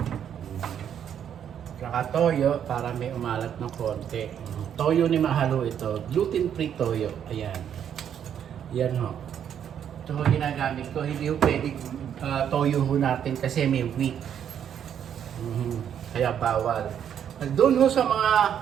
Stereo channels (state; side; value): quieter; left; 9.0 dB